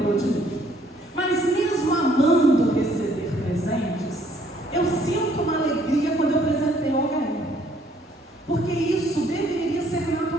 de mim? Mas mesmo amando receber presentes, eu sinto uma alegria quando eu presenteio alguém. Porque isso deveria ser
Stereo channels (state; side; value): normal; both; correlation 0.64